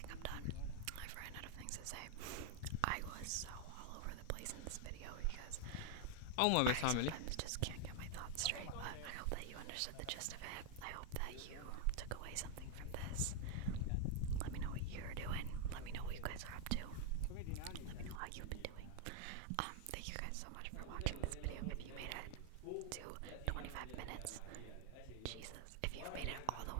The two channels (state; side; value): different; both; correlation 0.00